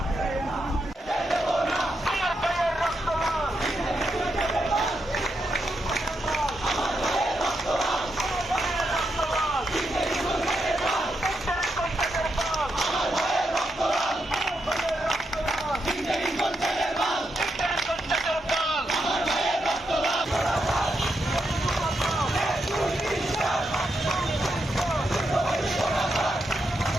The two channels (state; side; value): normal; both; correlation 0.83